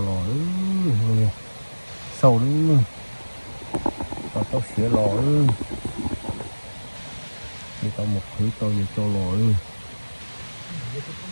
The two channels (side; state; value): both; inverted; correlation -1.00